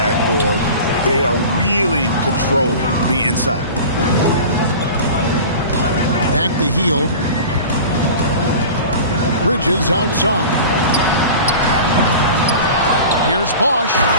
They are really controlling the inside. Back to Hield. Bridges outside. Here's Bosch.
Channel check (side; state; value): both; inverted; correlation -0.37